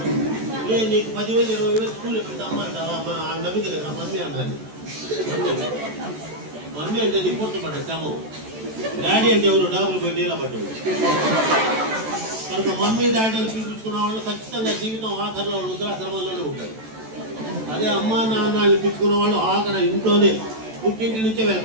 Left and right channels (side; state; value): left; late; 14 ms